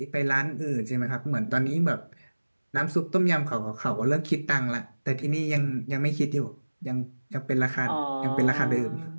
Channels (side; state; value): both; inverted; correlation -1.00